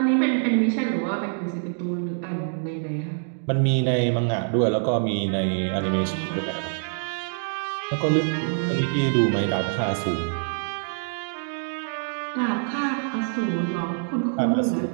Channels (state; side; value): silent; left; 62 dB below the other